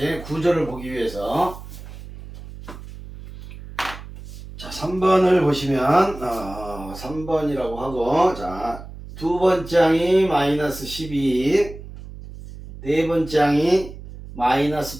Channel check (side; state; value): right; noise; hum, 14 dB below the sound